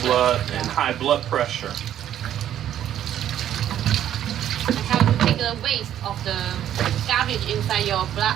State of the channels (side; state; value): left; quieter; 11.0 dB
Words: blood and high blood pressure. And how to take the waste of the garbage inside your